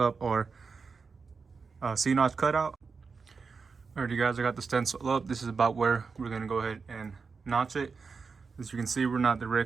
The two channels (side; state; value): left; quieter; 5.0 dB